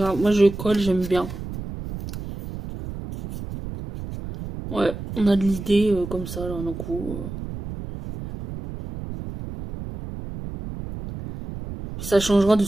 moi je colle, j'aime bien. Ouais, on a de l'idée comme ça, là, d'un coup. Ça changera de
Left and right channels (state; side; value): noise; right; rumble, 10 dB below the sound